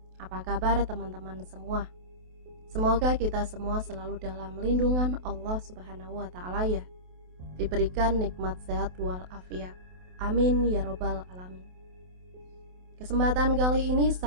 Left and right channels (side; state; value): left; late; 28 ms